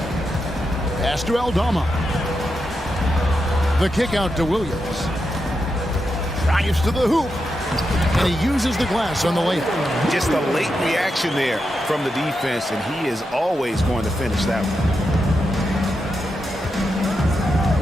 Pass to Aldama. The kick out to Williams. Drives to the hoop. And he uses the glass on the layup. Just a late reaction there from the defense, and he is always going to finish that one.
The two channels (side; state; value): both; normal; correlation 0.86